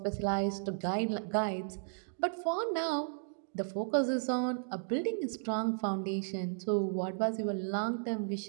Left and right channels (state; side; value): silent; left; digital silence